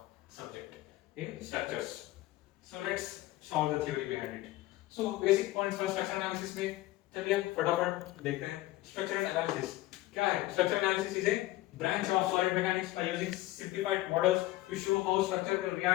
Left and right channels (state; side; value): quieter; right; 17.3 dB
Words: subject in structures. So let's solve the theory behind it. So basic points for structural analysis में चलिए फटाफट देखते हैं। Structural analysis क्या है? Structural analysis is a branch of solid mechanics by using simplified models to show how structure will